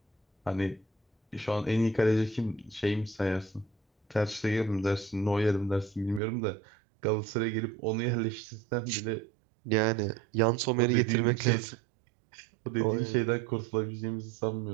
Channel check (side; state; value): left; drops out; at 6.2 s